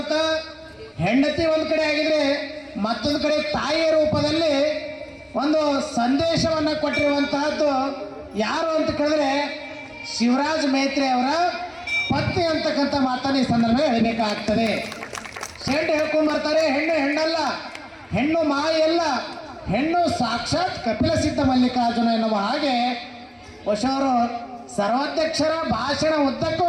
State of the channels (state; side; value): identical; both; correlation 1.00